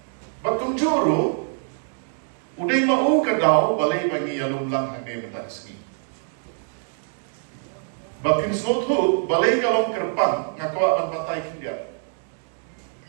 batung juru udai mau ke dau balai bagi alum lang hane mentaski. Bakin snothu balai kalong kerpang ngakwa ban patai kindia.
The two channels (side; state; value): left; silent; digital silence